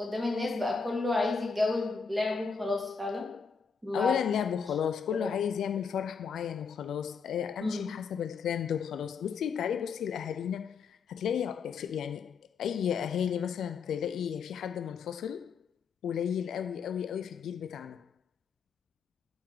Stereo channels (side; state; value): right; quieter; 5.7 dB